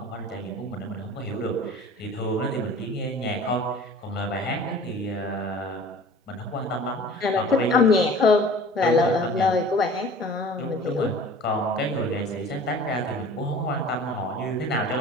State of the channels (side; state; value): both; normal; correlation 0.44